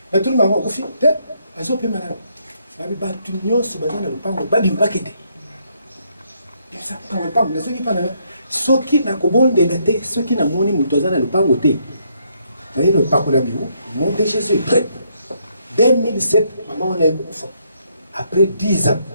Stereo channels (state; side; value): inverted; both; correlation -0.73